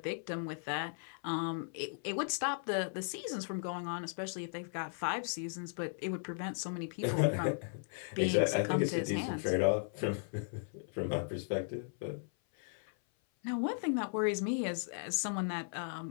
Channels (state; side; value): silent; right; 53 dB below the other